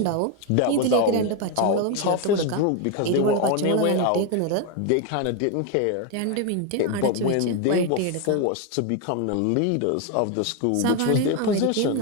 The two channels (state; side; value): different; both; correlation 0.02